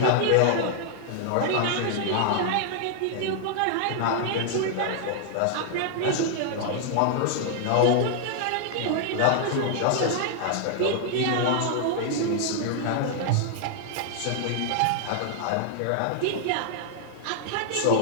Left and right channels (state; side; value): different; both; correlation -0.01